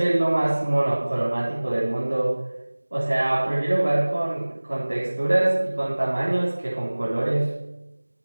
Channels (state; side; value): inverted; both; correlation -1.00